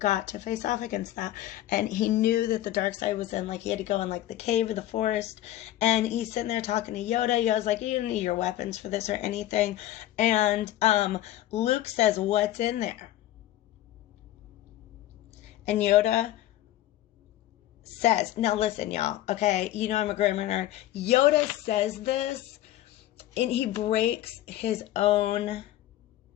to face off against that. And he knew that the dark side was in, like, he had to go in, like, the cave or the forest. And he's sitting there talking to Yoda. Yoda's like, you don't need your weapons for this or anything. And Luke says, what's in there? And Yoda says, now listen, y'all, okay? You know I'm a grammar nerd. Yoda says this, and he breaks his own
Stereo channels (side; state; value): right; quieter; 14.0 dB